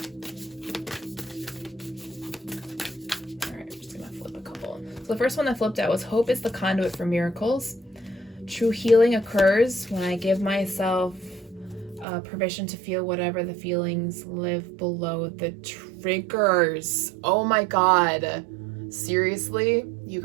The first one that flipped out was hope is the conduit for miracles. True healing occurs when I give myself permission to feel whatever the feelings live below the triggers. Oh my God. Seriously? You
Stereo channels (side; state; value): left; drops out; at 12.1 s